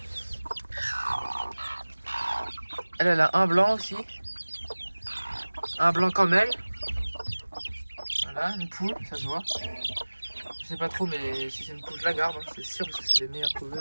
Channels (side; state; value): both; inverted; correlation -1.00